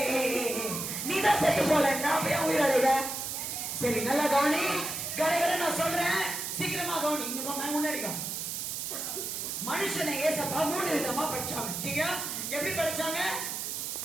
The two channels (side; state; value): right; noise; hiss, 4 dB below the sound